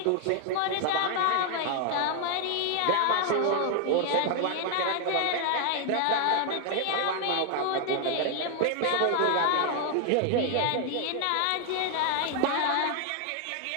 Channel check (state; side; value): different; both; correlation 0.00